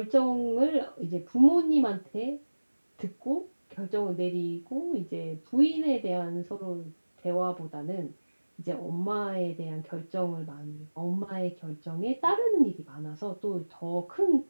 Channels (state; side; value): inverted; both; correlation -1.00